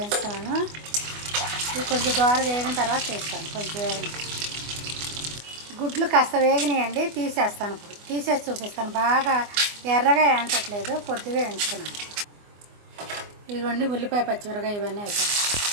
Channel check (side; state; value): left; late; 24 ms